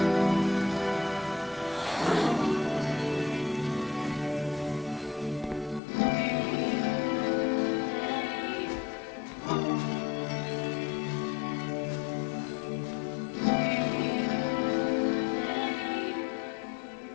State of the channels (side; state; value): right; drops out; at 5.8 s